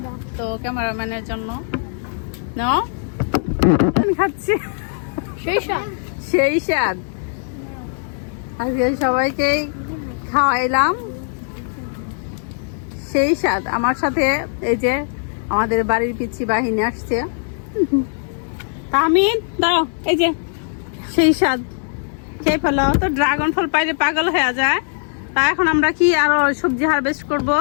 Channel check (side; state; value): right; silent; digital silence